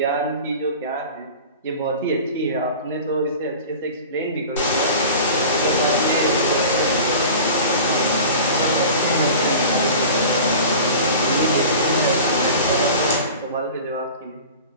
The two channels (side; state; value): both; inverted; correlation -0.38